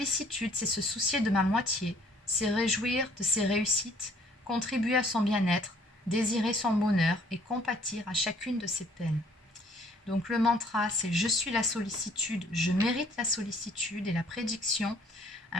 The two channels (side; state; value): both; normal; correlation 0.60